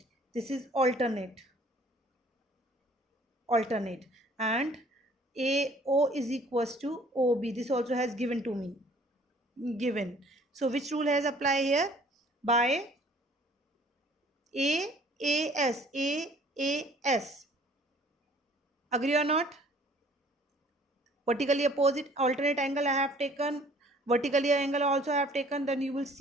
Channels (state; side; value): normal; both; correlation 0.55